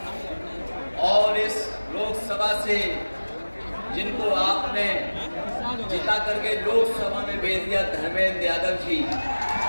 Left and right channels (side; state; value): both; inverted; correlation -1.00